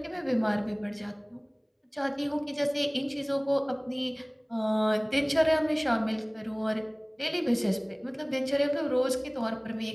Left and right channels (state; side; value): identical; both; correlation 1.00